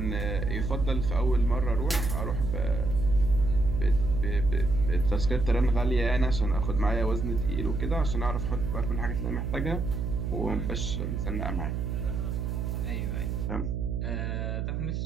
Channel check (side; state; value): right; noise; hum, 2 dB below the sound